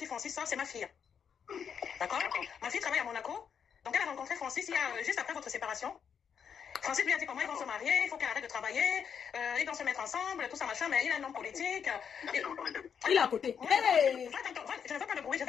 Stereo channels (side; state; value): right; quieter; 7.3 dB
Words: Francis sort, c'est ma fille. D'accord? Ma fille travaille à Monaco. Donc, elle a rencontré Francis juste après votre séparation. Francis lui a dit comment ils vont se marier, il faut qu'elle arrête de travailler, ils vont se mettre ensemble, tout ça, machin, mais il a un homme politique. Il est à côté. Hey! Je ne veux pas de bruit, je